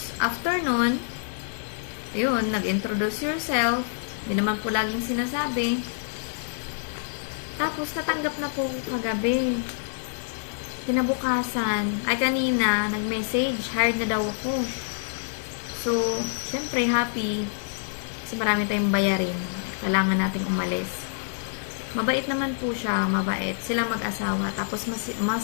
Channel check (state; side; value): silent; right; 60 dB below the other